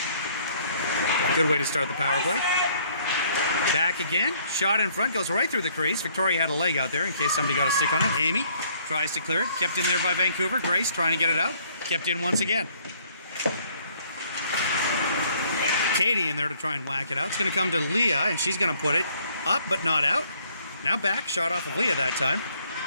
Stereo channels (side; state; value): both; inverted; correlation -0.63